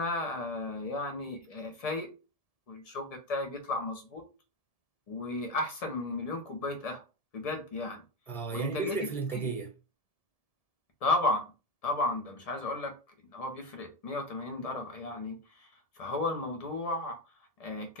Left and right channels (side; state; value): right; late; 1.7 ms